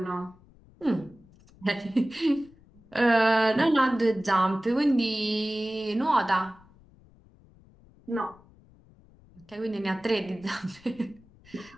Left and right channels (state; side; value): noise; left; rumble, 27 dB below the sound